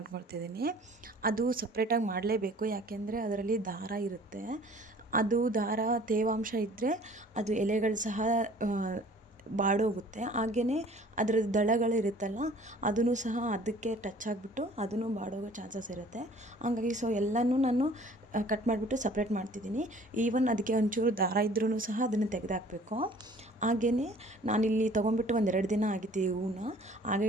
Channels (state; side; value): normal; both; correlation 0.51